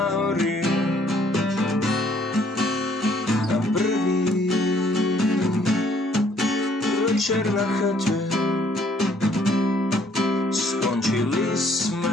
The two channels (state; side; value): normal; both; correlation 0.64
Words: hory. Na prvý večer na chate skončili